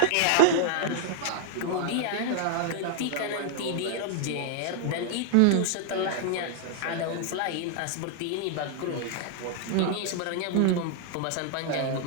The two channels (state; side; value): different; both; correlation 0.00